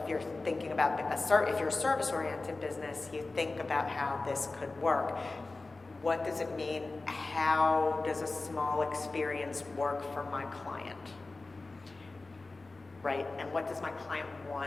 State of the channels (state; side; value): quieter; right; 3.4 dB